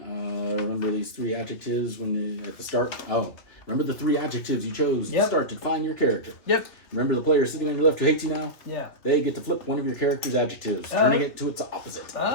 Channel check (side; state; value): right; late; 2.7 ms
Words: Remember these 3 adjectives at the start. Remember the 3 adjectives you chose at the start to define your character. Yep. Remember the player sitting on your left who hates you now? Yeah. They get to flip one of your character's adjectives, turning it to its opposite.